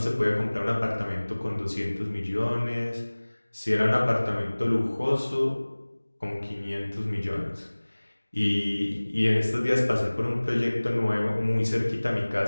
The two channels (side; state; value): both; inverted; correlation -1.00